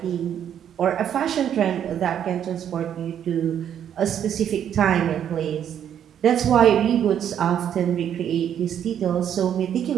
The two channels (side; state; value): left; quieter; 9.4 dB